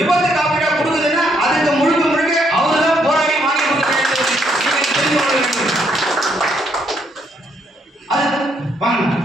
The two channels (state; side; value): normal; both; correlation 0.73